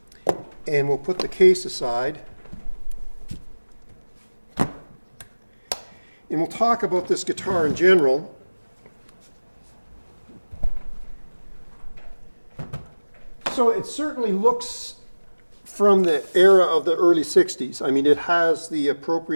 And we'll put the case aside. And we'll talk about this guitar in general. So it certainly looks from the era of the early 60s. I mean, it has the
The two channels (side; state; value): both; inverted; correlation -1.00